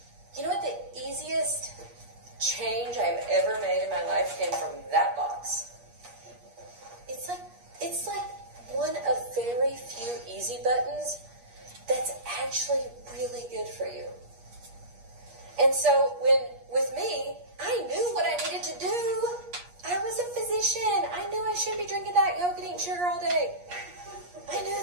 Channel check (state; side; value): late; left; 8.4 ms